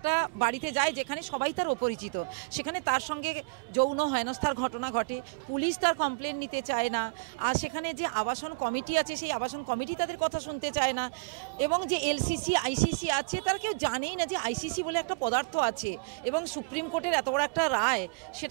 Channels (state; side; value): quieter; left; 33.3 dB